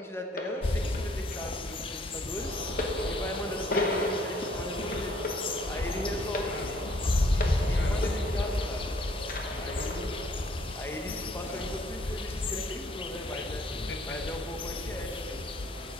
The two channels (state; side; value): normal; both; correlation 0.63